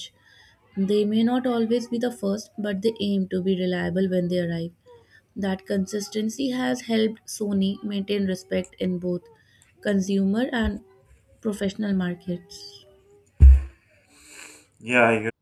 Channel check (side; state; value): both; identical; correlation 1.00